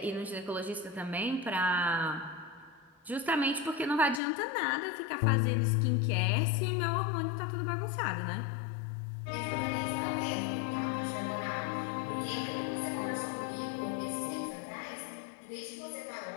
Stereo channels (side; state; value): right; drops out; at 4.2 s